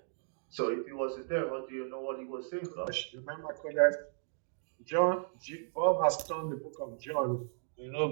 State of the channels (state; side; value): silent; left; digital silence